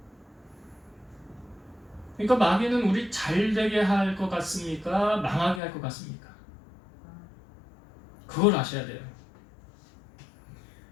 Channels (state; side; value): drops out; right; at 5.6 s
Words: 그러니까 마귀는 우리 잘 되게 할 것 같습니까? 망하게 할 것 같습니까? 그걸 아셔야 돼요.